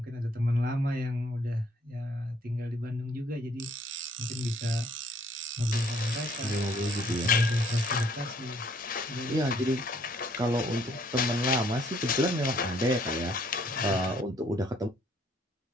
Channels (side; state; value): both; normal; correlation 0.63